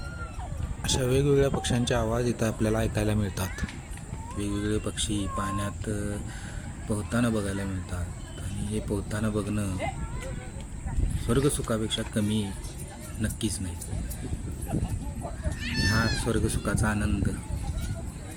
अशा वेगवेगळ्या पक्ष्यांचे आवाज इथं आपल्याला ऐकायला मिळतात. वेगवेगळे पक्षी पाण्यात पोहताना बघायला मिळतात आणि हे पोहताना बघणं स्वर्गसुखापेक्षा कमी नक्कीच नाही. हा स्वर्गसुखाचा आनंद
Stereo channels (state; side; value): identical; both; correlation 1.00